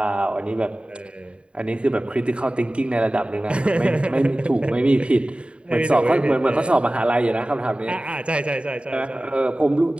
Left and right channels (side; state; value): left; late; 0.057 ms